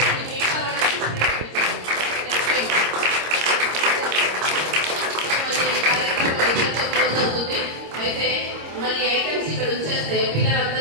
అయితే మరి ఐటమ్స్ ఇక్కడ ఉంచేస్తే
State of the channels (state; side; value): late; left; 26 ms